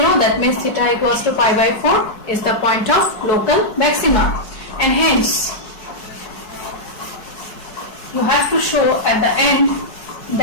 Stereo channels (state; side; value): late; right; 4.7 ms